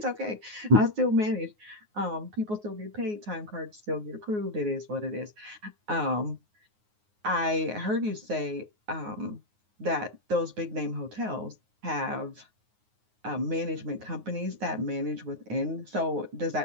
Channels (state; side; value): late; left; 9.5 ms